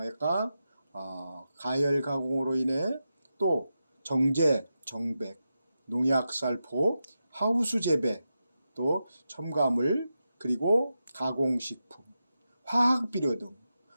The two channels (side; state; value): both; inverted; correlation -0.89